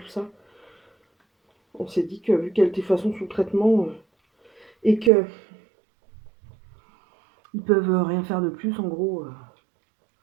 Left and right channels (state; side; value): drops out; left; at 5.1 s